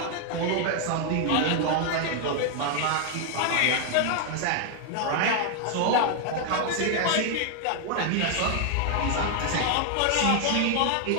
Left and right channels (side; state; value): both; different; correlation 0.00